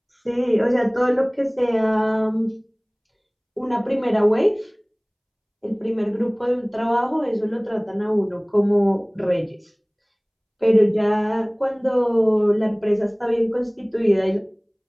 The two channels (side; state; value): both; identical; correlation 1.00